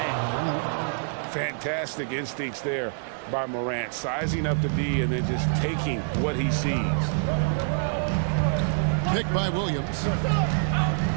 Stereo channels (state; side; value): silent; left; digital silence